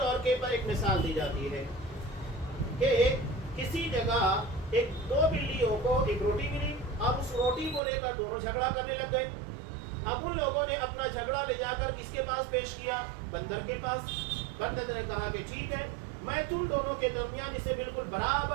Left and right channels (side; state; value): left; drops out; at 7.8 s